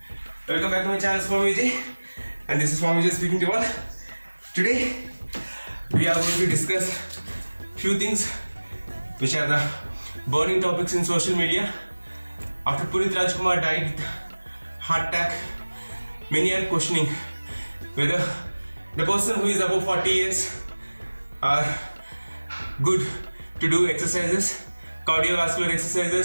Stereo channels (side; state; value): both; inverted; correlation -1.00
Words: welcome back to my channel Swami Vijay, and this is Swami Vijay speaking to you all. Today we are going to discuss few things which are the burning topics in social media. After Punit Rajkumar died with heart attack, many are questioning whether the person who is above 40 years are good to do exercises, cardiovascular